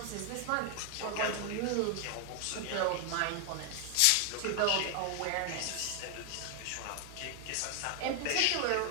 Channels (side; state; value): both; different; correlation 0.00